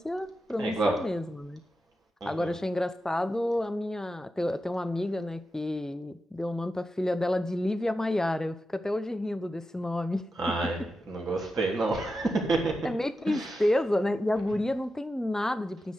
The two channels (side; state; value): both; normal; correlation 0.90